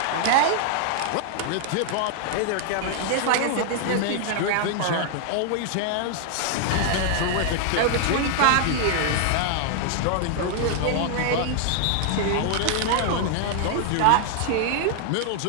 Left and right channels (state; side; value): different; both; correlation -0.01